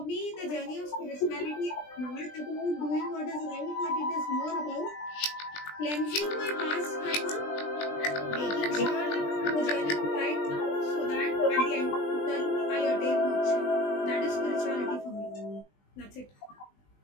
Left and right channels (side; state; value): right; late; 20 ms